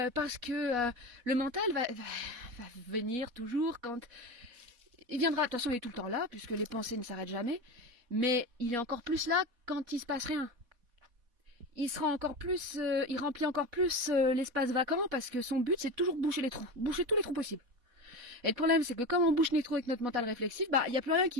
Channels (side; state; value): left; late; 4.1 ms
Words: que le mental va venir toujours quand... Il viendra, de toute façon il est tout le temps là, puisque les pensées ne s'arrêtent jamais, mais il est encore plus là quand il se passe rien. Il sera encore plus, il remplit encore plus l'espace vacant, parce que son but c'est toujours boucher les trous, boucher tous les trous possibles. Et le problème c'est que comme on bouche les trous avec notre mental réflexif, bah il n'y a plus rien qui